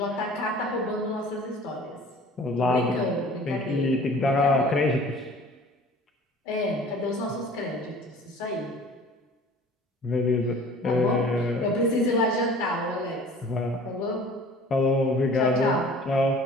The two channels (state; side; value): normal; both; correlation 0.46